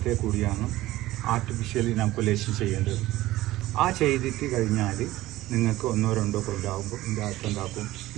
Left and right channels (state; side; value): quieter; left; 16.6 dB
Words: കൂടിയാണ് ആർട്ടിഫിഷ്യൽ ഇനാക്കുലേഷൻ ചെയ്യേണ്ടത്. ആ ചെയ്തിട്ട് കഴിഞ്ഞാൽ നിങ്ങൾക്ക് 1-2 കൊല്ലാകുമ്പോൾ ഇതിൻ്റെ അകത്ത് ഉണ്ടാക്കും.